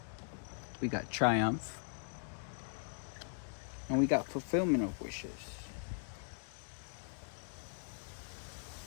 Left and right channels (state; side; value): silent; right; digital silence